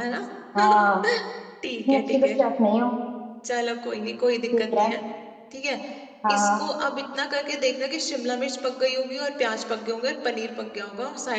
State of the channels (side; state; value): both; identical; correlation 1.00